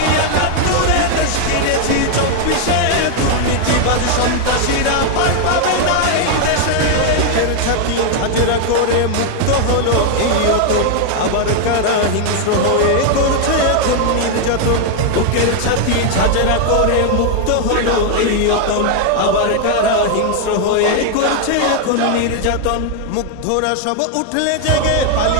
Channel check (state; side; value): different; both; correlation 0.00